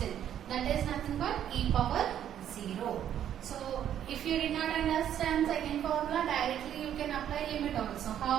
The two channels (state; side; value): quieter; left; 10.2 dB